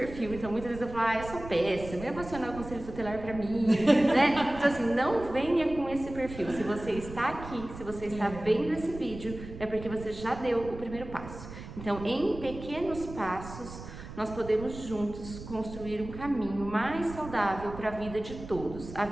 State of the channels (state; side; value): noise; right; rumble, 12 dB below the sound